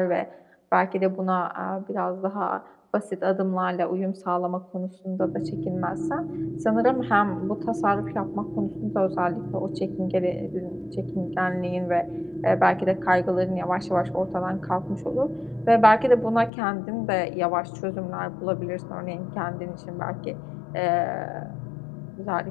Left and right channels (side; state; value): right; drops out; at 16.5 s